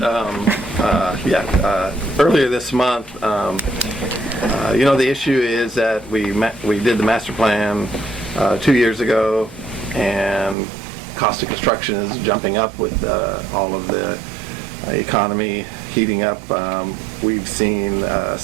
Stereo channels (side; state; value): left; drops out; at 10.6 s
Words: earlier this month. The issue is that we did the master plan 2 years ago, and cost of construction is jumping up with all of the economy heating up. We've seen